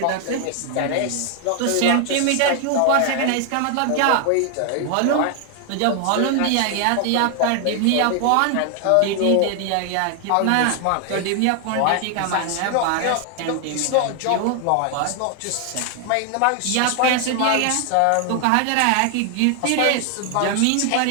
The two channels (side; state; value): both; different; correlation 0.00